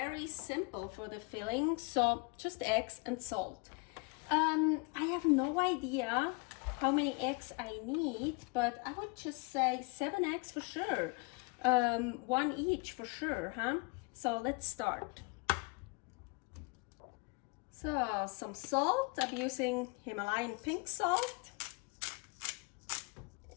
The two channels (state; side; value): quieter; right; 31.0 dB